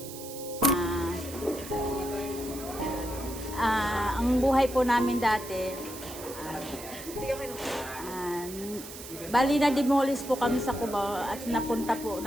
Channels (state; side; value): noise; right; hiss, 12 dB below the sound